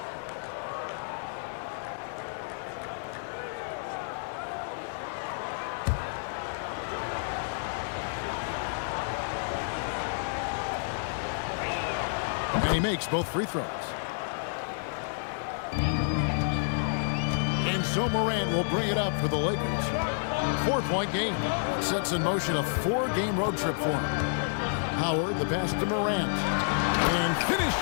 And he makes both free throws. And so Morant will bring it up for the Lakers. 4-point game. Sets in motion a 4-game road trip for him. Howard, the pass to Morant. And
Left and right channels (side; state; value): right; silent; 58 dB below the other